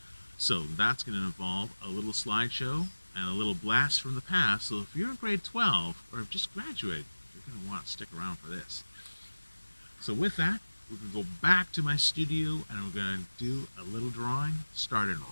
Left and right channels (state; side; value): inverted; both; correlation -1.00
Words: So that's going to involve a little slideshow and a little blast from the past. So if you're in grade 12 or have just graduated, you're going to want to stick around for this. So with that, we're going to go back to my studio and we're going to do a little drawing starting